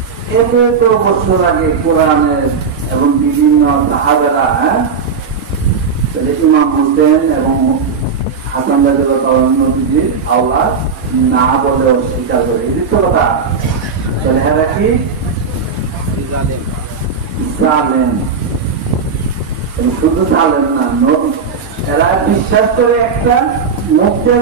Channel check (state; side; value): quieter; left; 5.6 dB